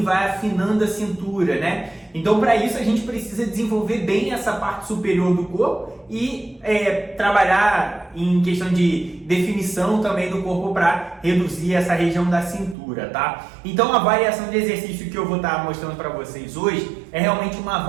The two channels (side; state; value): left; drops out; at 12.8 s